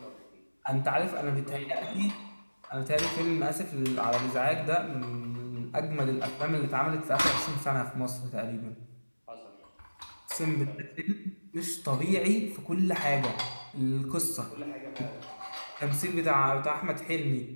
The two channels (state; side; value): inverted; both; correlation -1.00